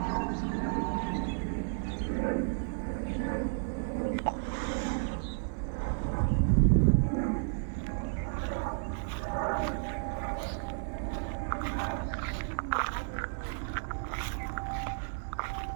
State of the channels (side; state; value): left; silent; digital silence